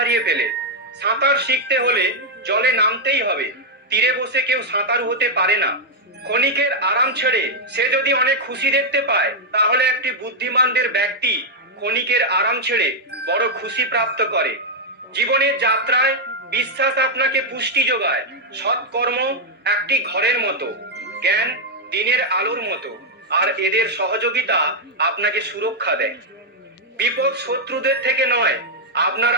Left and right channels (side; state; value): both; normal; correlation -0.02